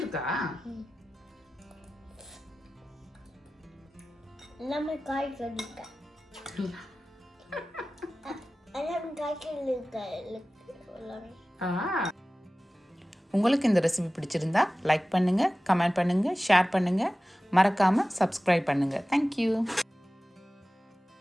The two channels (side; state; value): both; normal; correlation 0.96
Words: எல்லாமே காய்கறி இருக்கு. உங்களுக்கு இந்த ரெசிபி பிடிச்சிருந்தா லைக் பண்ணுங்கள், கமெண்ட் பண்ணுங்கள், ஷேர் பண்ணுங்கள், மறக்காமல் சப்ஸ்கிரைப் பண்ணுங்கள். தேங்க்யூ.